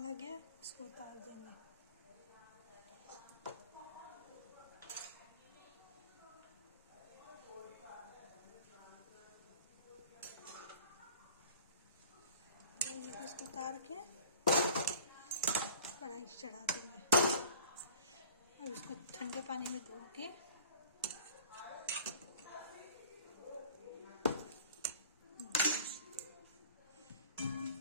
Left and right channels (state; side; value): inverted; both; correlation -0.46